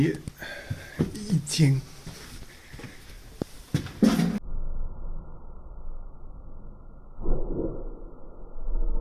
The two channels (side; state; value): both; identical; correlation 1.00